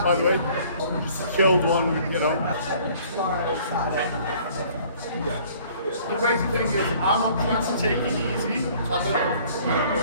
by the way. Just killed one, you know. The crazy thing is, I'm not trying to take it easy. So I don't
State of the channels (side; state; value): both; inverted; correlation -0.55